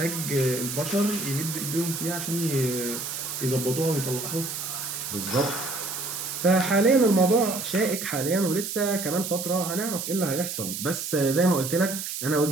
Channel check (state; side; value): noise; right; hiss, 5 dB below the sound